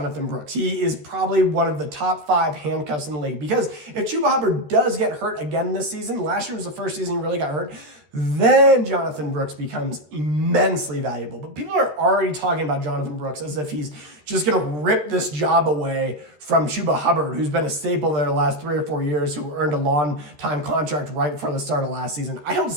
Brooks. He is probably one of the top 5 handcuffs in the league because if Chuba Hubbard does get hurt again this season, last year was the first season he really got hurt, then Jonathan Brooks becomes immensely valuable. But people are already talking about Jonathan Brooks as if he's just going to rip this job away from Chuba Hubbard, who's been a staple there the last 3 or 4 years, who earned a long-time contract right before the start of last season. I don't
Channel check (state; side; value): late; left; 13 ms